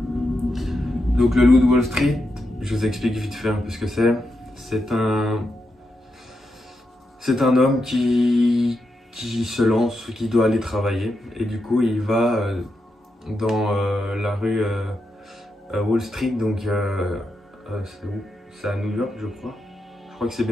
Donc le Loup de Wall Street, je vous explique vite fait un peu ce que c'est. C'est un homme qui se lance, qui doit aller travailler, et du coup il va dans la rue Wall Street, donc c'est où? C'est à New York, je crois. Je crois que c'est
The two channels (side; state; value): both; normal; correlation 0.85